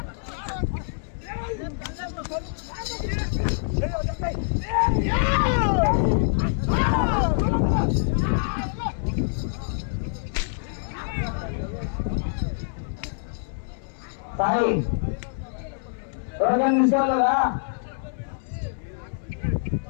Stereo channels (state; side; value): silent; right; 61 dB below the other